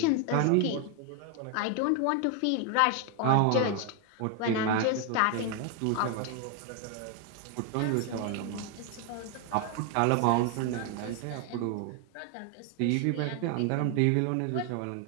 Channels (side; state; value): both; different; correlation 0.01